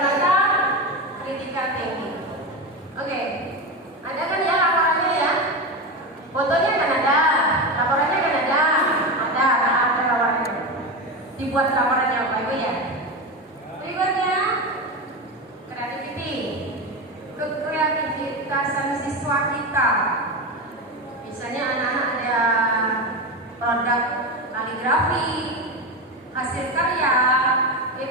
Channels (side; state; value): both; normal; correlation 0.18